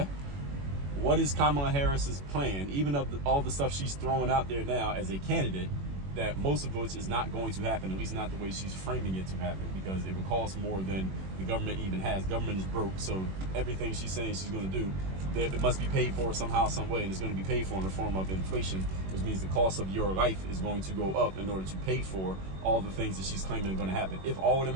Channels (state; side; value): late; left; 21 ms